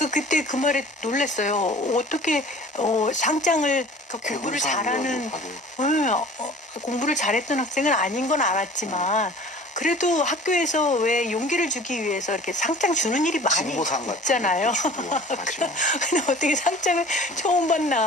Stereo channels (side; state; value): both; normal; correlation 0.45